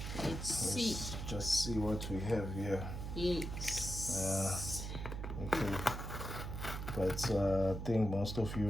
Let's see. Just see what we have here. Yes. Okay. But I think most of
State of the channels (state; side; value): noise; right; hum, 5 dB below the sound